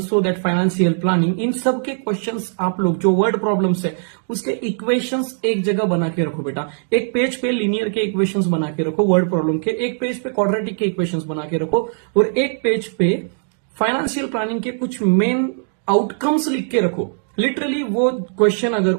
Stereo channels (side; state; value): left; silent; digital silence